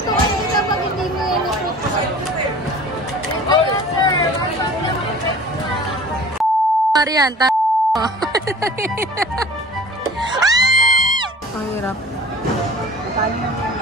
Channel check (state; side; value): normal; both; correlation 0.43